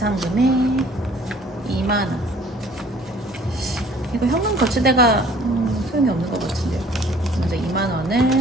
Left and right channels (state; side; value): normal; both; correlation 0.54